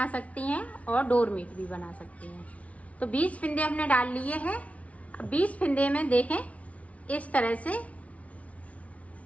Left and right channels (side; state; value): right; late; 0.066 ms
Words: सकती हैं और डोर मैट भी बना सकती हैं। तो 20 फिंदे हमने डाल लिए हैं। 20 फिंदे में देखें इस तरह से